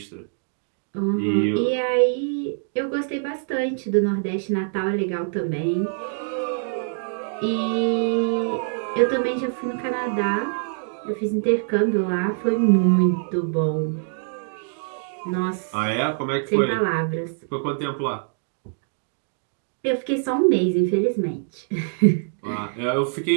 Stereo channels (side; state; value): left; silent; digital silence